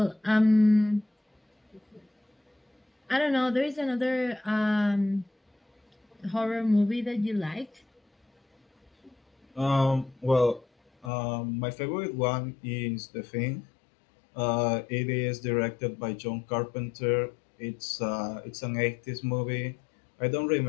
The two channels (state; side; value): drops out; right; at 11.1 s